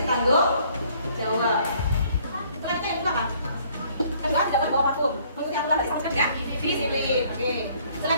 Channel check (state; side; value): inverted; both; correlation -0.61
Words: tanggung jawab. Selanjutnya yang kedua apa? Kedua tidak boleh bawa vakum. Maksudnya yang kedua tadi sama ya. Disiplin. Oke.